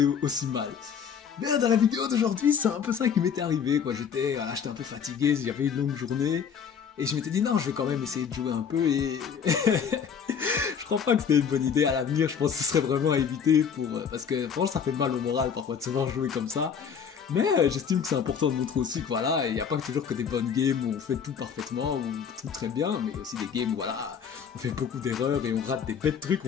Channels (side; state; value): right; quieter; 7.1 dB